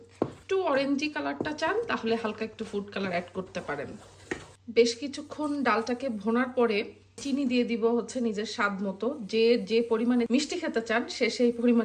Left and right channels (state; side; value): identical; both; correlation 1.00